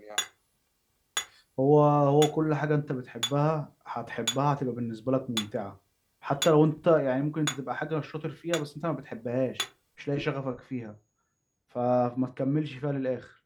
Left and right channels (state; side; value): identical; both; correlation 1.00